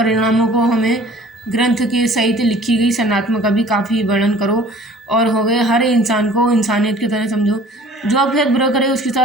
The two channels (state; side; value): normal; both; correlation 0.49